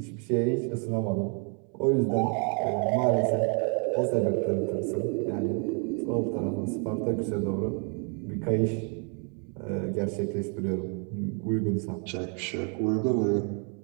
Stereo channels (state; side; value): quieter; left; 39.4 dB